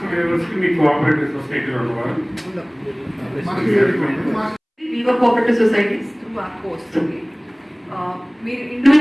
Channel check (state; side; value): identical; both; correlation 1.00